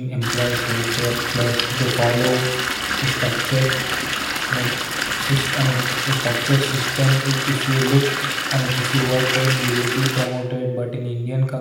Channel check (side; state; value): both; identical; correlation 1.00